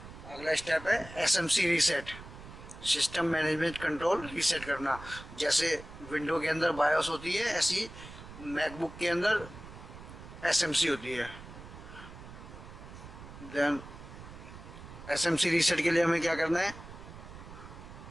अगला स्टेप है SMC reset, system management control reset करना। जैसे विंडो के अंदर बायोस होती है, ऐसी मैकबुक के अंदर SMC होती है। देन SMC रीसेट के लिए हमें क्या करना है,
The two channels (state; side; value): noise; right; rumble, 15 dB below the sound